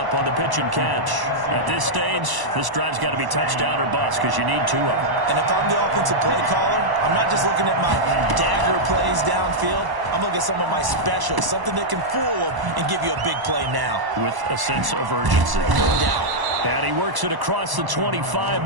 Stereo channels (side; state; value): left; late; 1.0 ms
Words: on the pitch and catch. At this stage, this drive's got to be touchdown or bust because you need 2 of them. And if I'm the offensive play caller, I'm not just looking at my dagger plays downfield. I'm looking at some of my specials, something that can fool them and give you a big play now. With a sense of urgency. No doubt. And he works it across the 25